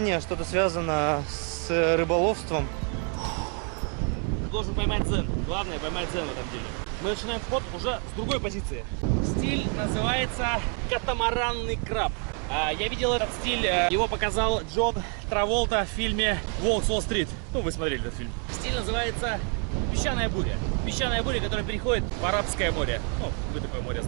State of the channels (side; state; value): left; quieter; 39.8 dB